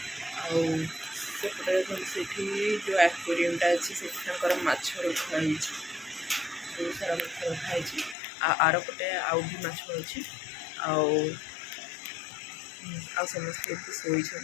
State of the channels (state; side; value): drops out; right; at 8.2 s